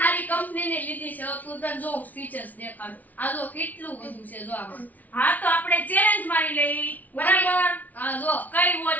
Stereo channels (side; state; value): right; late; 0.077 ms